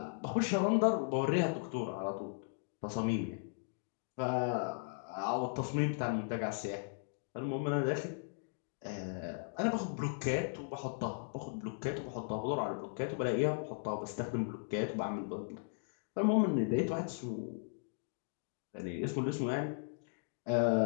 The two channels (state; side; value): silent; right; digital silence